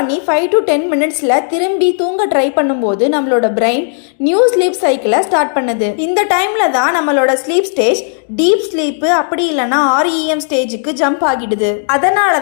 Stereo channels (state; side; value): silent; right; 60 dB below the other